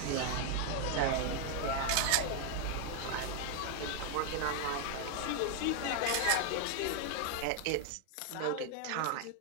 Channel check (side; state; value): both; different; correlation 0.00